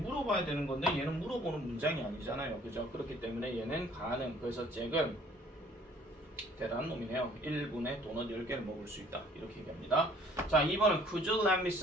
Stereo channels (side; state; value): both; normal; correlation 0.57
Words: 되는 건데 얘는 물어보는 문장이 아니잖아요. 그죠? 그렇기 때문에 얘는 가능. 그래서 잭은 대단한 놈이네요. 1분에 도넛 10개를 먹을 수 있다. 이렇게 얘기합니다. 자, 2번은 Could you lend me